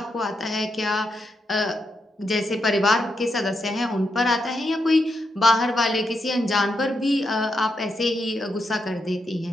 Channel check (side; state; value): both; normal; correlation 0.83